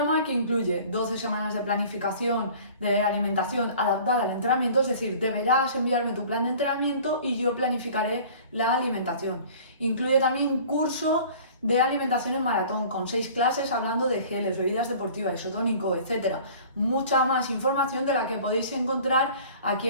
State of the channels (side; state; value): both; inverted; correlation -0.46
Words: que incluye 12 semanas de planificación de alimentación adaptada al entrenamiento, es decir, deberás enviarme tu plan de entrenamiento y yo planificaré la alimentación. Incluye también un curso de alimentación en maratón con 6 clases hablando de geles, bebidas deportivas, isotónico, etc. Mucha más información de la que podéis encontrar aquí